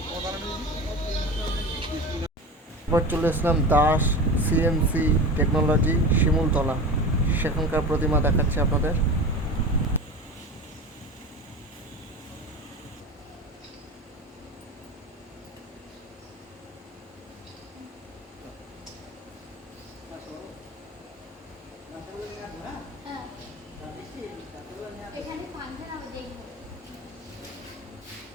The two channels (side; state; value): both; normal; correlation 0.30